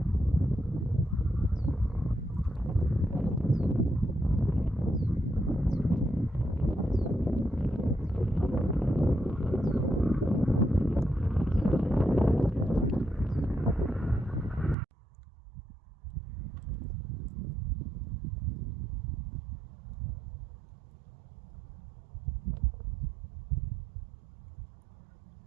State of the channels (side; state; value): left; drops out; at 14.8 s